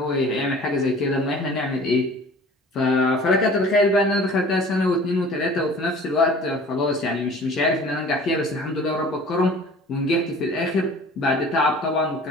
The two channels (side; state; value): both; normal; correlation 0.46